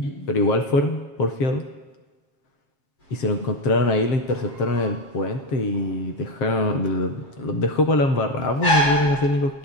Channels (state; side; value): late; right; 7.4 ms